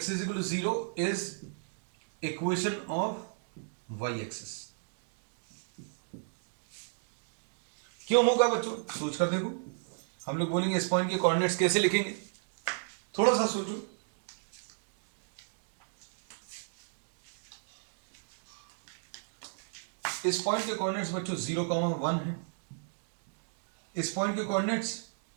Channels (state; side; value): silent; left; digital silence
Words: is equal to 0 is equation of y axis. क्यों होगा बच्चों? सोच कर देखो। हम लोग बोलेंगे इस पॉइंट के कोऑर्डिनेट्स कैसे लिखेंगे, थोड़ा सा सोचो। इस पॉइंट के कोऑर्डिनेट्स बच्चों 0,1 है। इस पॉइंट के कोऑर्डिनेट्स